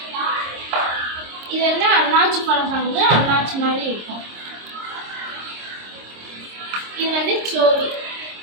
இது அண்ணாச்சி பழம் சங்கு. அண்ணாச்சி மாதிரி இருக்கும். இது சோவி.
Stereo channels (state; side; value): late; left; 26 ms